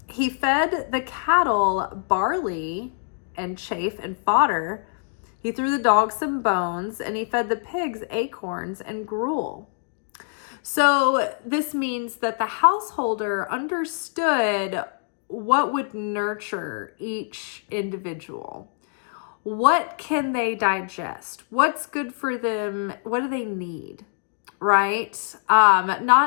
He fed the cattle barley and chaff and fodder. He threw the dogs some bones, and he fed the pigs acorns and gruel. So this means that the householder understood what would nurture each individual. What can they digest? What's good for them? What do they need? Right?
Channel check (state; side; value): silent; right; digital silence